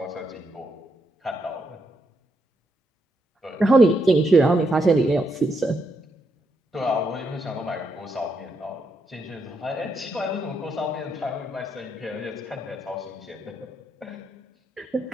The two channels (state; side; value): normal; both; correlation 0.79